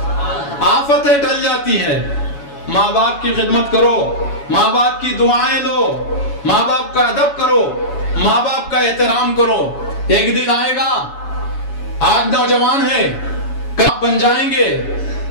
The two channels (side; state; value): right; late; 7.1 ms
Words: آفتیں ٹل جاتی ہے. ماں باپ کی خدمت کرو, ماں باپ کی دعائیں لو, ماں باپ کا ادب کرو, ماں باپ کا احترام کرو. ایک دن آئے گا, آج نوجوان ہیں, کب بن جائیں گے,